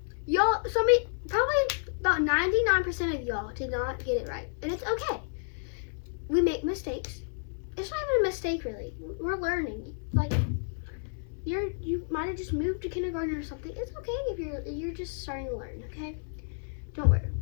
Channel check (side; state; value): right; silent; 57 dB below the other